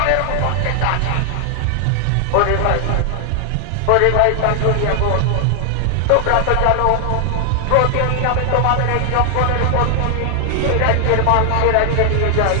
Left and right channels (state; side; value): different; both; correlation 0.00